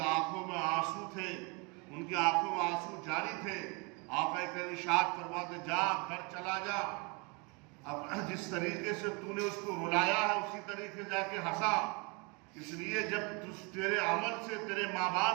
آنکھوں میں آنسو تھے، ان کی آنکھوں میں آنسو جاری تھے۔ آقا کا ارشاد فرماتے جا، گھر چلا جا، اب جس طریقے سے تو نے اس کو رلایا ہے اسی طریقے جا کے ہنسا۔ اس لیے جب تیرے عمل سے تیرے ماں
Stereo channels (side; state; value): left; quieter; 30.5 dB